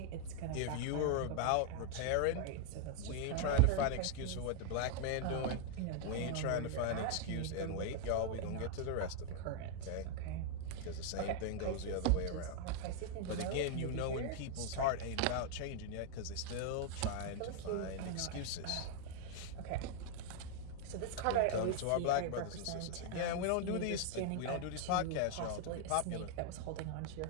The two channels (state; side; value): different; both; correlation 0.00